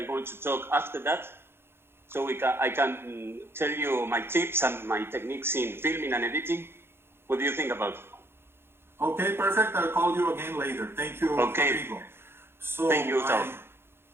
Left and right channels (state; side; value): late; left; 0.11 ms